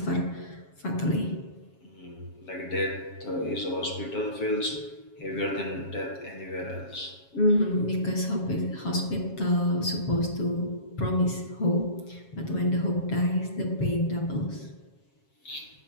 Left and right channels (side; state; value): right; late; 7.3 ms